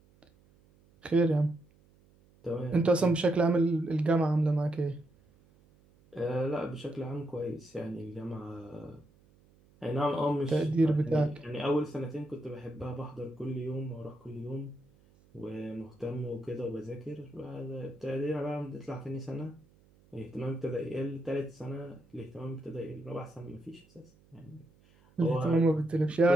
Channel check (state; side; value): noise; right; hum, 30 dB below the sound